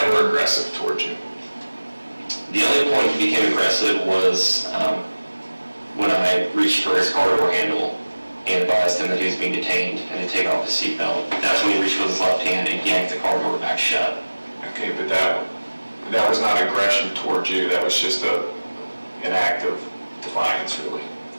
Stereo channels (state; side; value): inverted; both; correlation -1.00